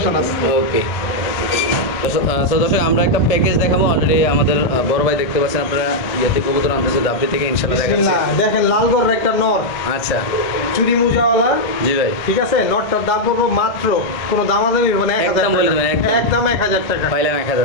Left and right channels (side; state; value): right; late; 1.6 ms